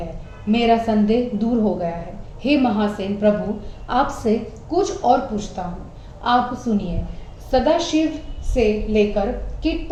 मेरा संदेह दूर हो गया है। हे महासेन प्रभु, आपसे कुछ और पूछता हूँ, आप सुनिए। सदाशिव से लेकर कीट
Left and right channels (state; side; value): identical; both; correlation 1.00